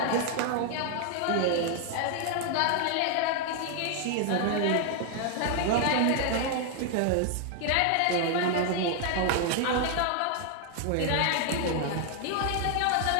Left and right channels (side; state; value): both; different; correlation 0.00